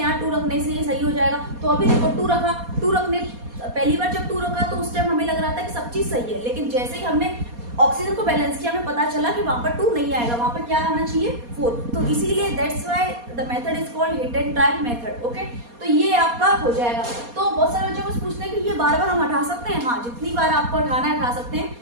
2 रखने से ये सही हो जाएगा। तो अभी देखो 2 रखा, 2 रखने पहली बार जब 2 रखा तो उस टाइम हमें लग रहा था कि सब चीज सही है, लेकिन जैसे ही हमने ऑक्सीजन को बैलेंस किया हमें पता चला कि वहां पर 2 नहीं आएगा, वहां पर क्या आना चाहिए 4। तो इसीलिए that's why the method is called hit and trial method. Okay, तो ये आपका हो जाएगा। तो बहुत सारे बच्चों को पूछते हैं कि ये बार बार हम हटा सकते हैं? हाँ, जितनी बार आपको हटाना है हटा सकते हैं,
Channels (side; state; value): left; late; 4.2 ms